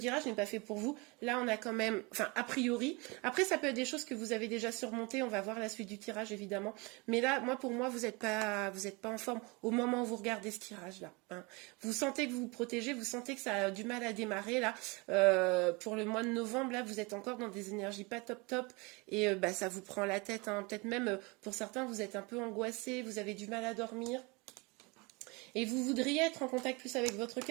n'est pas fait pour vous. Là, on a quand même, enfin, a priori. Après, ça peut être des choses que vous avez déjà surmontées. On va voir la suite du tirage, évidemment. Mais là, pour moi, vous n'êtes pas en forme au moment où vous regardez ce tirage-là. Hein. Vous sentez que vous vous protégez, vous sentez que ça a du mal à démarrer, là. Pour le mois de novembre, là, vous êtes encore dans des énergies pas top. Et ça vous prend la tête. Hein. Peut-être même, pour certains, vous êtes un peu angoissés, vous avez du mal à dormir. Et vous voudriez être en contact plus avec votre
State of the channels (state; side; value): quieter; left; 27.5 dB